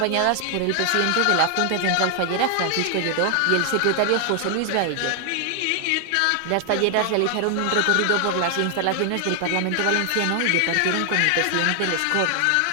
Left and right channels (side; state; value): both; different; correlation 0.00